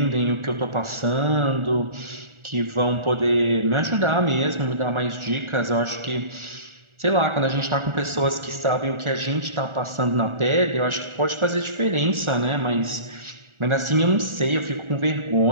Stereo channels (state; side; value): late; left; 1.4 ms